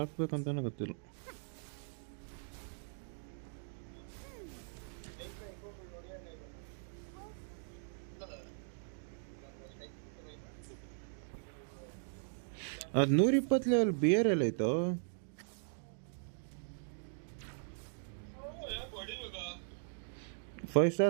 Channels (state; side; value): silent; left; digital silence